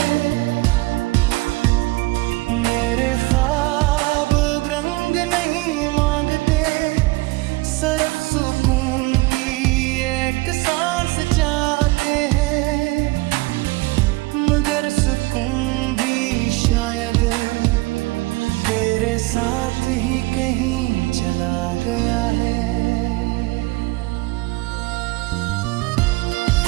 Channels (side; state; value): left; quieter; 22.5 dB